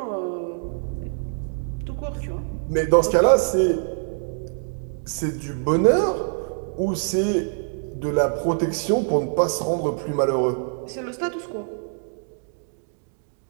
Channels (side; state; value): left; silent; digital silence